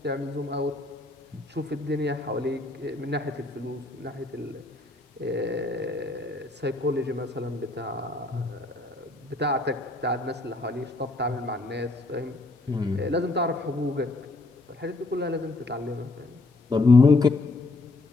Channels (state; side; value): quieter; right; 3.1 dB